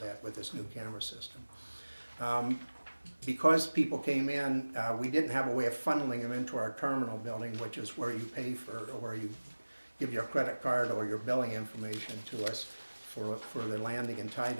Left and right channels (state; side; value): inverted; both; correlation -1.00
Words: that with this new camera system. Because people came in, we didn't have a way of funneling them into our terminal building, which is where you pay for, or where you give your credit card or your billing information to us for the landing and